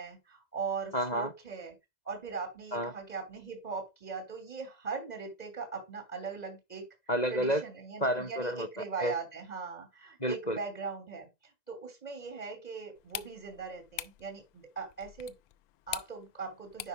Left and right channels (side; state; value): right; late; 2.0 ms